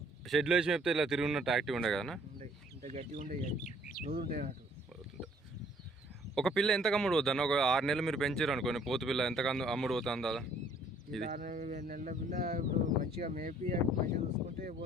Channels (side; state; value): both; normal; correlation 0.60